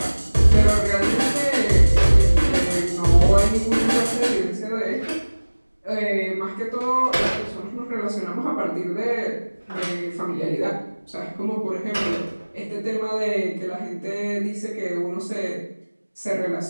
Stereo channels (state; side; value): inverted; both; correlation -1.00